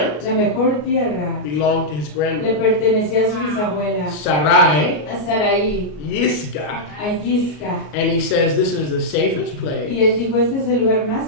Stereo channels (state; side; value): late; right; 33 ms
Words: La mejor tierra belonged to his le grandmother. pertenecía a su bisabuela, Sarai, a Saraí, Yiscah. a Yisca. And he says this is the safest place Y él dijo, este es el lugar más